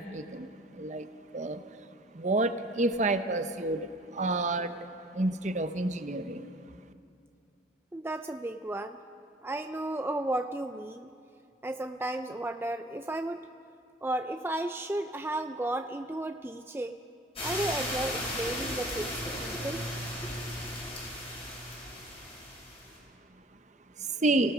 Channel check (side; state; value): both; normal; correlation 0.51